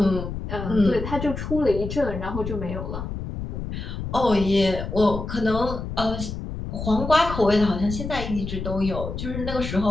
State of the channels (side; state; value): left; noise; rumble, 6 dB below the sound